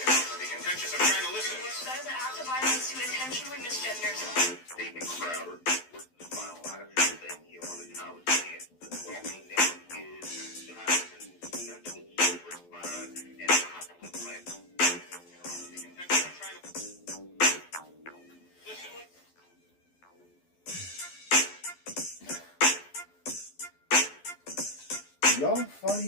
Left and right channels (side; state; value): right; late; 12 ms